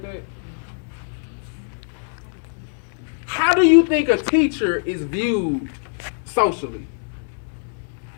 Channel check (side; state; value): right; silent; 64 dB below the other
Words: that? How do you think a teacher is viewed socially?